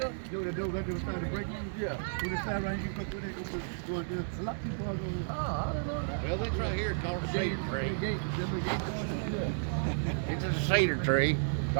You know the door right there was trying to break in? Yeah. When the side right, you can put it going there. A lot of people are going. Oh, I don't know that. Well, this right here is called a cedar tree. The gate going there. It's a cedar tree. It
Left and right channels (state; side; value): silent; left; digital silence